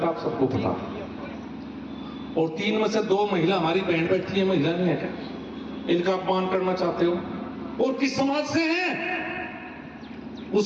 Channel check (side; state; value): both; identical; correlation 1.00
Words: आप सबको पता। और 3 में से 2 महिला हमारी बहन बैठी है, महिला नहीं है क्या? इनका अपमान करना चाहते हो? और किस समाज से हैं?